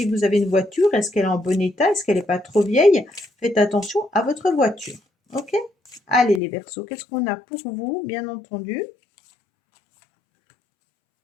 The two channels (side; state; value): right; drops out; at 6.4 s